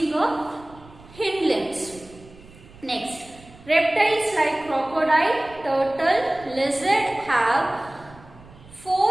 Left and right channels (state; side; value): noise; right; rumble, 22 dB below the sound